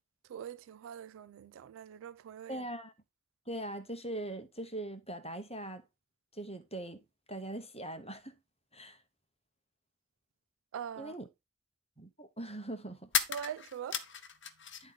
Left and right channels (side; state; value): both; normal; correlation 0.08